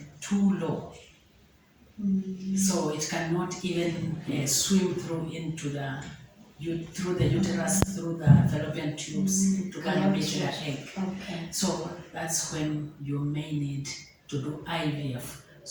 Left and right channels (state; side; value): identical; both; correlation 1.00